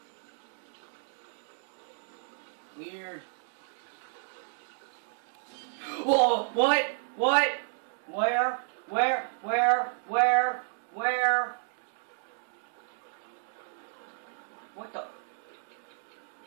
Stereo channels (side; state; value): left; silent; digital silence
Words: Weird. Whoa! What? What? Where? Where? Where? Where? Where? What the?